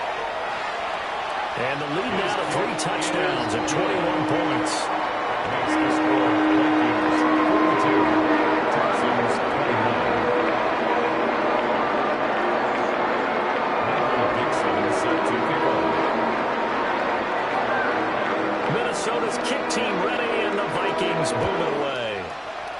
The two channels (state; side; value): identical; both; correlation 1.00